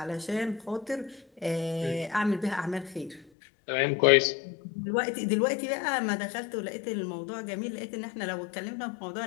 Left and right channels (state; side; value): drops out; right; at 3.2 s